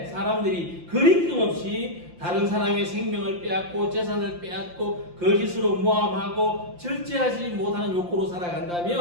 사람들이 거리낌 없이 다른 사람의 생명을 빼앗고 재산을 빼앗고 거짓으로 모함하고 절제하지 못하는 욕구로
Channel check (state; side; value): late; left; 5.8 ms